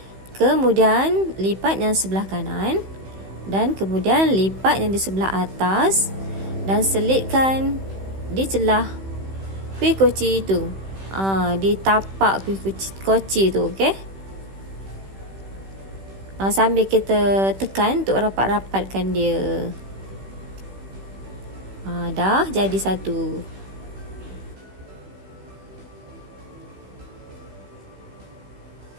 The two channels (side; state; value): left; late; 16 ms